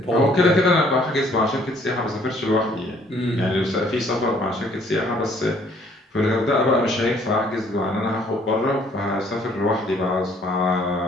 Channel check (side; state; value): both; normal; correlation 0.61